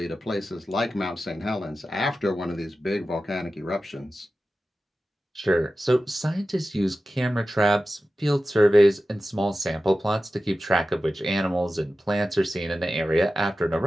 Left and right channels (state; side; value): normal; both; correlation 0.94